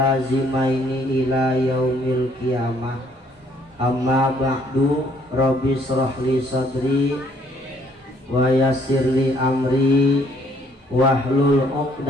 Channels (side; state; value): both; normal; correlation 0.64